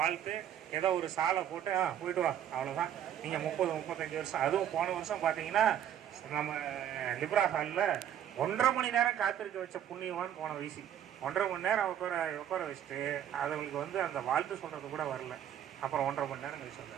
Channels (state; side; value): quieter; left; 10.2 dB